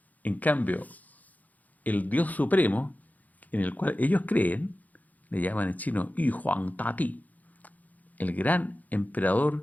En cambio, el Dios Supremo, en el cual ellos creen, le llaman en chino Yu Huang Tati, el gran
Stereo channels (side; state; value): right; late; 0.079 ms